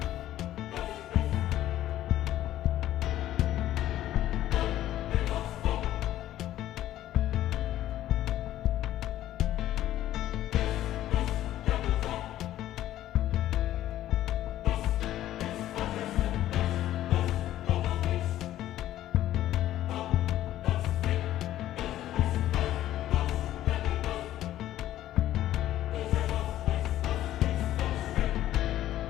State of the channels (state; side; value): quieter; right; 13.2 dB